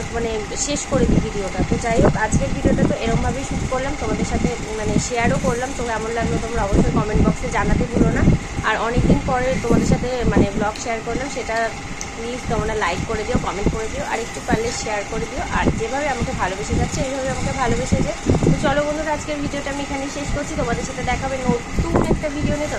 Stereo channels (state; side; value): identical; both; correlation 1.00